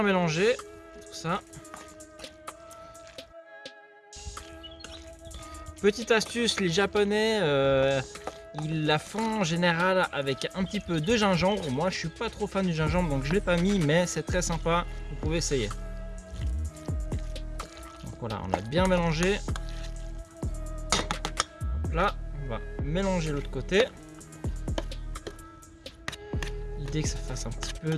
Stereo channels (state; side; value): identical; both; correlation 1.00